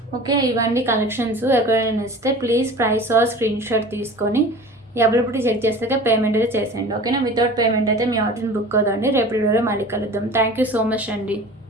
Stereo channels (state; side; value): normal; both; correlation 0.40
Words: Okay, ఇవన్నీ కలెక్షన్స్. ఎక్కడైనా నచ్చితే please price or screen shot తీసుకొని అవైలబిలిటీ చెక్ చేస్తే పేమెంట్ అయితే చేసేయండి. ఓకేనా, వితౌట్ పేమెంట్ అయితే మీ ఆర్డర్ని బుక్ అవుతుంది. రేపు వీడియోలో మళ్ళీ కలుద్దాం. థ్యాంక్ యూ సో మచ్ అండి.